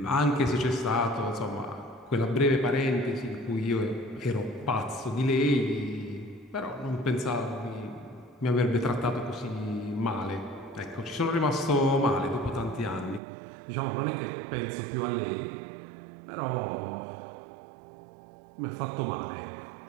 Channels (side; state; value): left; drops out; at 13.2 s